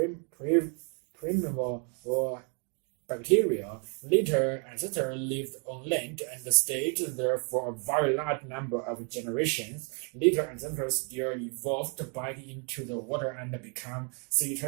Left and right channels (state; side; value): quieter; left; 38.3 dB